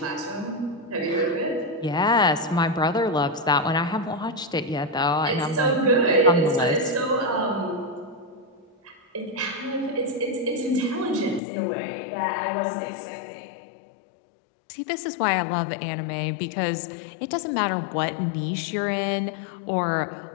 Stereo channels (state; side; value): drops out; right; at 11.4 s